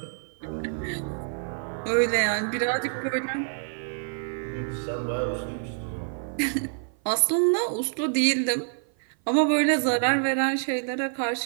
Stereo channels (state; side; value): silent; left; 56 dB below the other